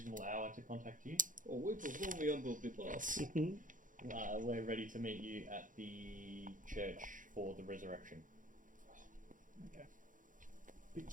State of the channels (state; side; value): late; left; 0.38 ms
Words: hour to contact you. Oh, we perform the unbelievable class. We're ready to meet you at the church for the resurrection. Okay.